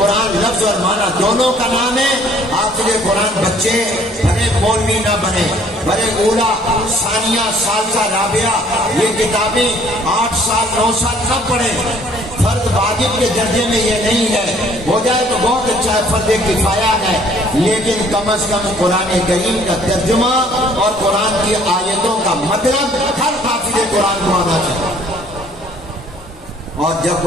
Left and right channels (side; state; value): both; normal; correlation 0.59